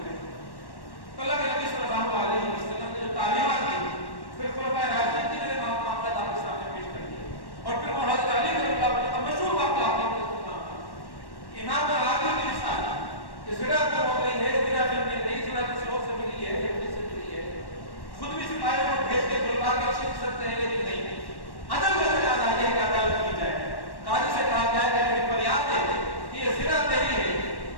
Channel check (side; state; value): right; late; 1.1 ms